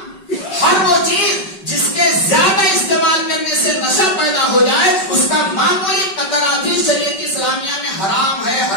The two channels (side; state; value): right; late; 5.2 ms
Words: ہر وہ چیز جس کے زیادہ استعمال کرنے سے نشہ پیدا ہو جائے اس کا معمولی قطرہ بھی شریعت اسلامیہ میں حرام ہے،